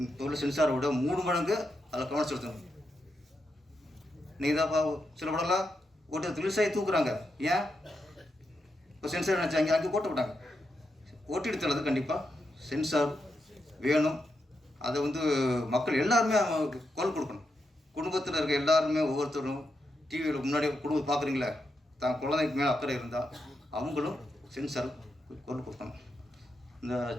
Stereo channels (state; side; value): normal; both; correlation 0.84